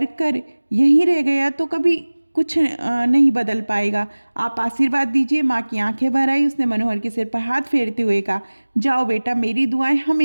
कर यहीं रह गया तो कभी कुछ नहीं बदल पाएगा, आप आशीर्वाद दीजिए। माँ की आंखें भर आई। उसने मनोहर के सिर पर हाथ फेरते हुए कहा, जाओ बेटा, मेरी दुआएं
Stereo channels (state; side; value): inverted; both; correlation -1.00